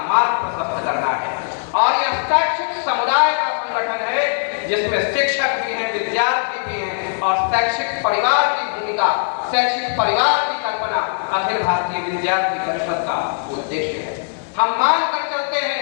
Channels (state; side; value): silent; right; 66 dB below the other